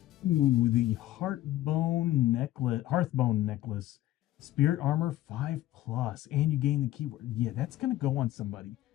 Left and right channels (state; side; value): quieter; right; 14.7 dB